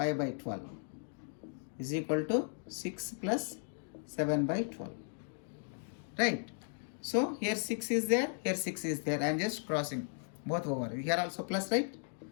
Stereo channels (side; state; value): right; silent; 54 dB below the other